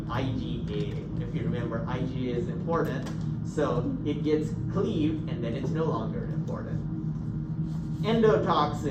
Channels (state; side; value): identical; both; correlation 1.00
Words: IgA. If you remember, IgA is important, so it gets cleaved and then it's no longer important.